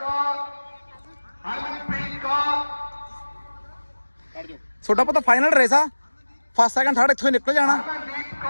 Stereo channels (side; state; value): both; inverted; correlation -1.00